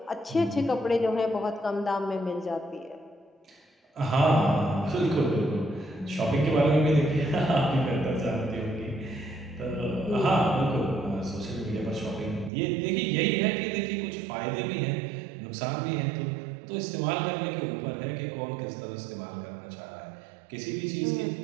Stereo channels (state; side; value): drops out; left; at 12.5 s